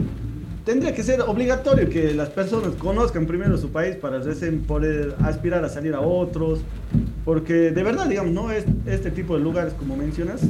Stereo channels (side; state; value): both; identical; correlation 1.00